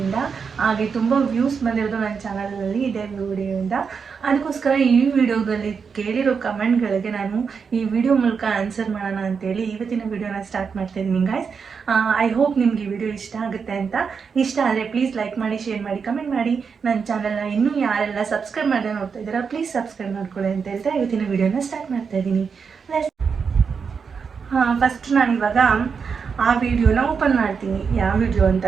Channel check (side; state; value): left; quieter; 5.9 dB